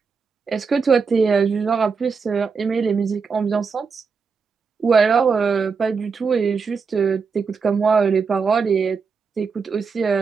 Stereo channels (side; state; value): left; quieter; 5.3 dB